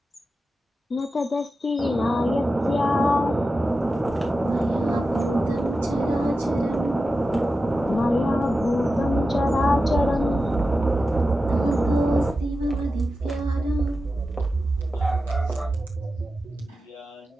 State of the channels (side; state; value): both; normal; correlation 0.92